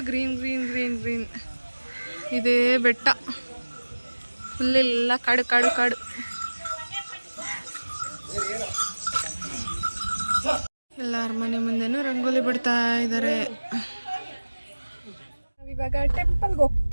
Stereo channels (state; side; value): inverted; both; correlation -1.00